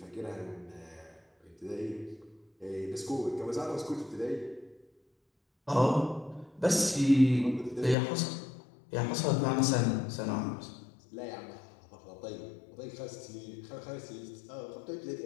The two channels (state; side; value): drops out; right; at 8.0 s